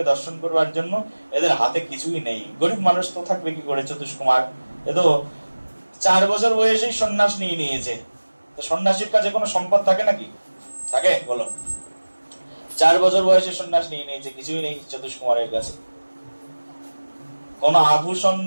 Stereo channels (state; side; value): inverted; both; correlation -1.00